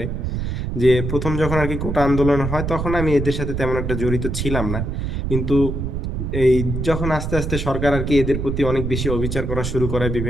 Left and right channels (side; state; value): right; noise; rumble, 3 dB below the sound